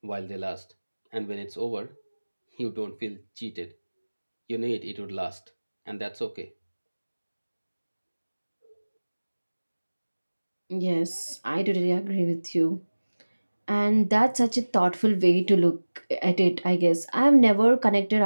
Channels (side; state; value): both; inverted; correlation -1.00